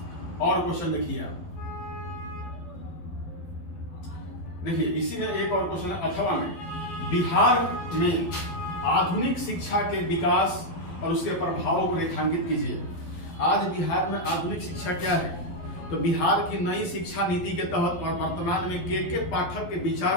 और क्वेश्चन देखिए आप, देखिए इसी में एक और क्वेश्चन है 8वां में, बिहार में आधुनिक शिक्षा के विकास और उसके प्रभावों को रेखांकित कीजिए। आज बिहार में आधुनिक शिक्षा क्या है? तो बिहार की नई शिक्षा नीति के तहत और वर्तमान में के पाठक के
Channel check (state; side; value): late; right; 12 ms